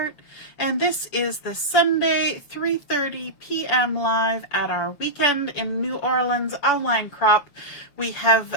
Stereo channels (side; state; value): right; late; 7.0 ms